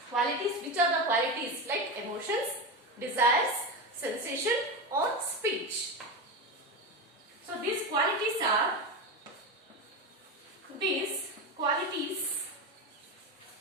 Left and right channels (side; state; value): both; normal; correlation 0.18